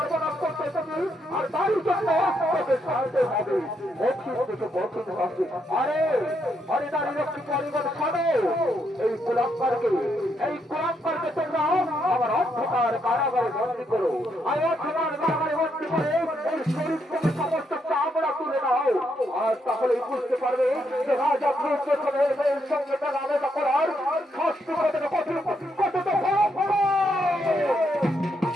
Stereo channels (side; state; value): both; normal; correlation 0.78